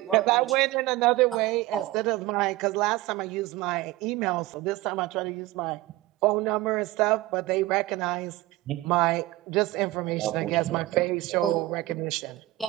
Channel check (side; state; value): left; quieter; 18.1 dB